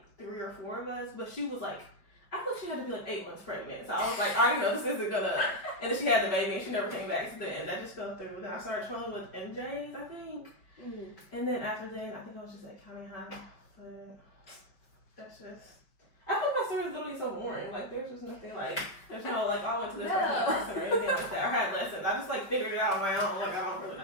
3 or 4 of us, but she was, like, I thought she had to be, like, 8 months pregnant. So I was like, I already know this isn't gonna. And then she had the baby, and she never came back to the end. I just fell through. Then I started trolling with MJs, I think. Mm-hmm. And then after then, I think I was just at county high. But that's just. I feel my story is literally so boring. Like, there's just nothing, like, there's no, like, I went to this person or anything like that, or had lessons. I just, like, figured it out on my own. Like, I don't really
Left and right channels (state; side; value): late; right; 5.2 ms